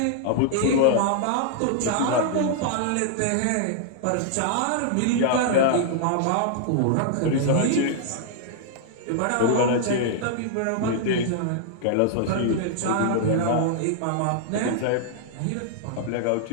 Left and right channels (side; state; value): both; different; correlation -0.01